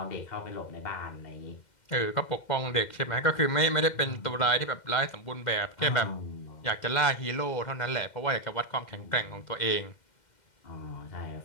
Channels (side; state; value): right; late; 2.1 ms